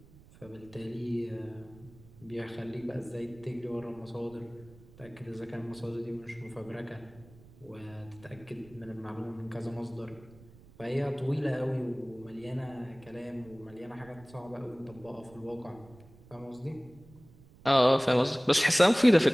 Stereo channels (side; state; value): right; noise; rumble, 23 dB below the sound